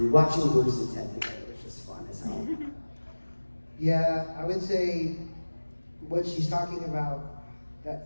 Watching Bruce and Ted together was just fun as hell. Yeah, I would say what she's talking about,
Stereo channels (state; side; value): inverted; both; correlation -1.00